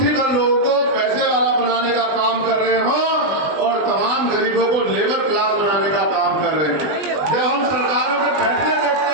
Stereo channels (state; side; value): late; left; 20 ms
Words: भर लोगों को पैसे वाला बनाने का काम कर रहे हो और तमाम गरीबों को लेबर क्लास बनाने का काम कर रहे हैं। जब हम सरकारों के फैसले देखते